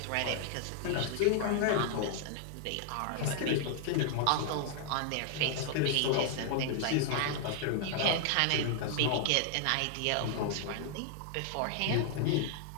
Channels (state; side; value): different; both; correlation -0.01